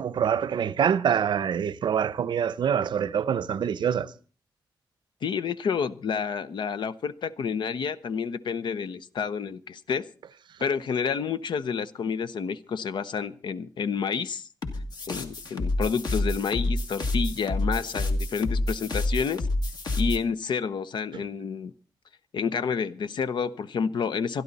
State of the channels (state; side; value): normal; both; correlation 0.53